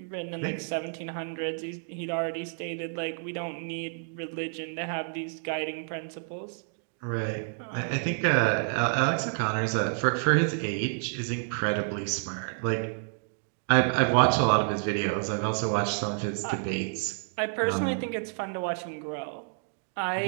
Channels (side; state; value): left; silent; digital silence